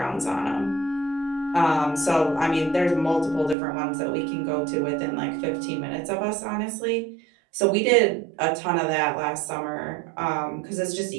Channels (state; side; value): drops out; left; at 3.6 s